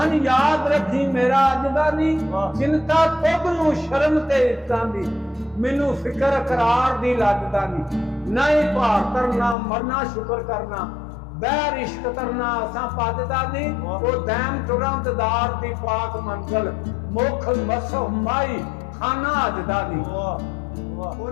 ਯਾਦ ਰੱਖੀ ਮੇਰਾ ਅੱਜ ਦਾ ਨਹੀਂ ਚਿੰਤਾ ਤੁਧ ਨੂੰ ਸ਼ਰਮ ਤੇ ਇੱਤਾਂ ਦੀ ਮੈਨੂੰ ਫਿਕਰ ਕਰਾਰ ਦੀ ਲੱਗਦਾ ਨਹੀਂ ਭਾਰ ਕਰਨਾ ਮਰਨਾ ਸ਼ੁਕਰ ਕਰਨਾ ਬਹਿਰ ਇਸ਼ਕ ਕਰਨਾ ਅਸਾਂ ਪੱਜਦਾ ਨਹੀਂ ਉਹ ਦੈਮ ਤੁਰੰਤਦਾਰ ਦੀ ਪਾਕ ਮੰਜ਼ਲ ਮੁਖ ਮਸੋ ਮਾਈ ਖਾਨਾ ਅਜਦਾ ਨਹੀਂ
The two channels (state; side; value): drops out; right; at 9.6 s